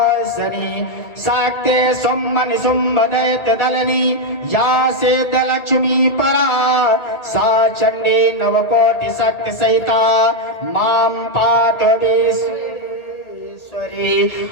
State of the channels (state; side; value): late; right; 1.8 ms